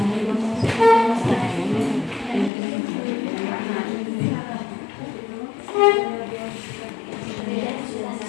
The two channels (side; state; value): right; drops out; at 2.5 s